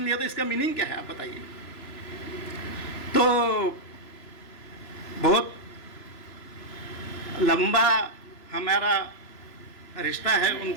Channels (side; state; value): right; late; 3.0 ms